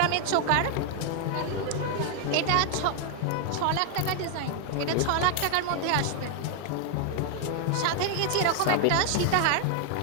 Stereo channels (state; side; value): different; both; correlation 0.00